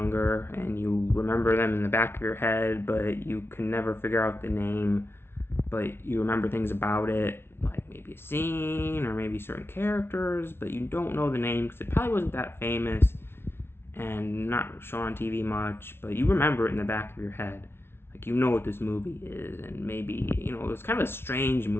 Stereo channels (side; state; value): right; late; 0.12 ms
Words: and you remember them in the back of your head, but you can never figure out the name, but you remember things about it, like maybe a scene or maybe certain characters, but you don't know the name because it probably wasn't that famous and not shown on TV much, but you remember it in the back of your head. Like you know what this movie is, and maybe it was kind of a strange